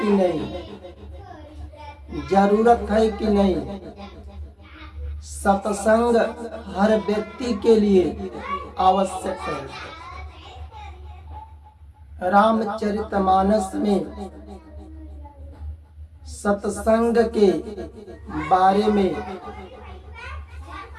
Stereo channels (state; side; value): identical; both; correlation 1.00